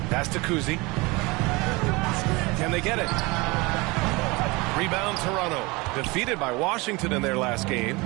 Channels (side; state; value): left; quieter; 24.5 dB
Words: Pass to Kuzi. Can they get it? Rebound Toronto. Defeated by Washington in their last game.